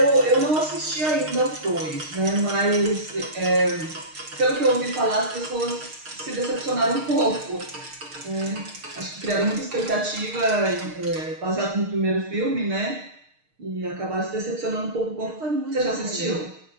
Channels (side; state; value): left; late; 6.5 ms